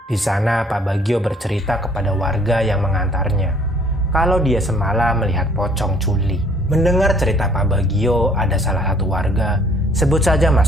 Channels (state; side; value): normal; both; correlation 0.59